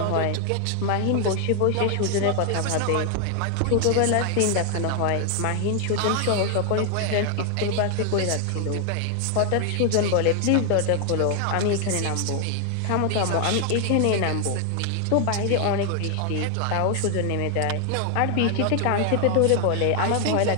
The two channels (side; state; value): both; different; correlation 0.00